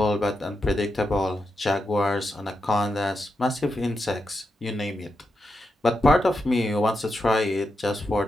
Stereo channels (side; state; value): both; normal; correlation 0.86